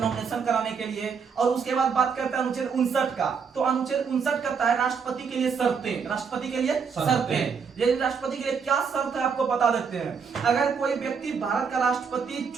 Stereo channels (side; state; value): left; quieter; 6.0 dB